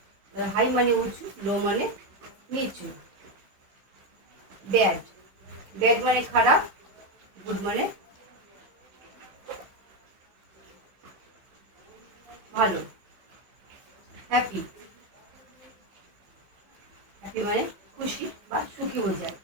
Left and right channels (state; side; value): late; left; 16 ms